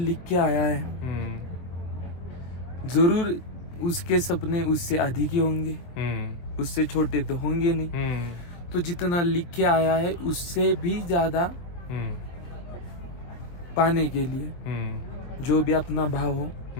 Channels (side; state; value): right; late; 23 ms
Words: के आया है जरूर उसके सपने उससे अधिक ही होंगे, उससे छोटे तो होंगे नहीं। तो जितना लिख के आया है उससे भी ज्यादा पाने के लिए जो भी अपना भाव हो,